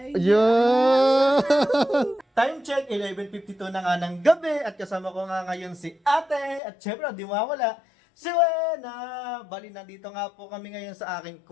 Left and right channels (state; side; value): drops out; right; at 6.6 s